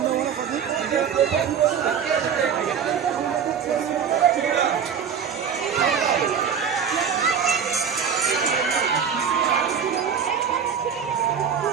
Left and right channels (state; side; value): quieter; left; 7.3 dB